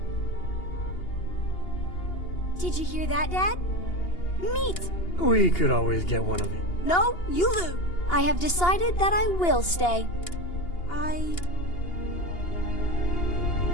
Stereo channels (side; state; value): right; late; 2.8 ms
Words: Did you hear that, Dad? Meat! We could always get one of you. No, you lose. I have decided that I will stay.